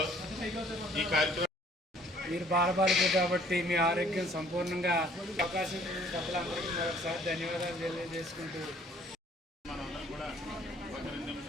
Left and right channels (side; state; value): both; normal; correlation 0.58